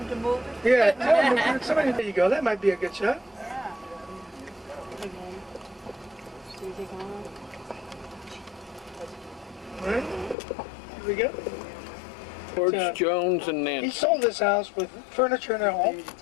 him to move it? Yeah, tell him, somebody, there you go. That might be a good shot. All right, here we go. George Jones and He Nancy. sold this house with furniture and all,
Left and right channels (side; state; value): right; drops out; at 10.4 s